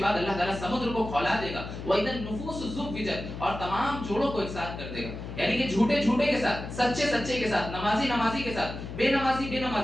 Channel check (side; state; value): left; noise; hum, 9 dB below the sound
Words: بعد اللہ تعالیٰ سمندر کو کھولا دے گا. وَإِذَا النُّفُوسُ زُوِّجَتْ, اور تمام جوڑوں کو ایک ساتھ کر دے گا. یعنی کہ جھوٹے جھوٹے کے ساتھ, سچے سچے کے ساتھ, نمازی نمازی کے ساتھ, بے نمازی بے